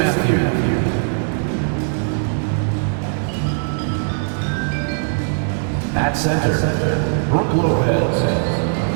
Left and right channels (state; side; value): silent; left; digital silence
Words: At center, Brooke Lopez.